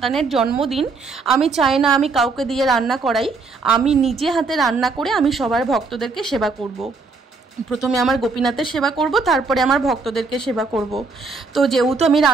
জন্মদিন, আমি চাই না আমি কাউকে দিয়ে রান্না করাই, আমি নিজে হাতে রান্না করে আমি সবার ভক্তদেরকে সেবা করব। প্রথমে আমার গোপীনাথের সেবা করব, তারপরে আমার ভক্তদেরকে সেবা করব। তো যেহেতু আমি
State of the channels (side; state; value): left; quieter; 4.1 dB